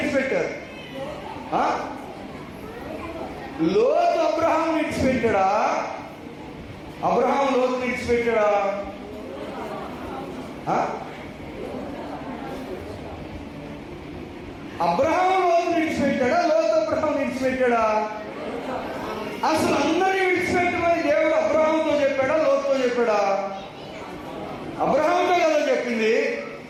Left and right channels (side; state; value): both; identical; correlation 1.00